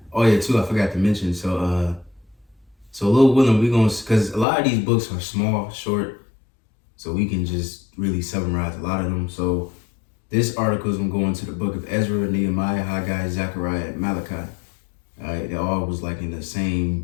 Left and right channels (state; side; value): drops out; right; at 4.5 s